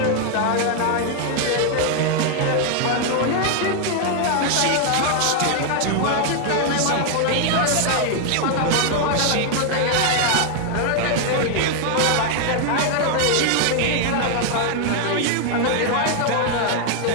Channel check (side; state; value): both; different; correlation 0.00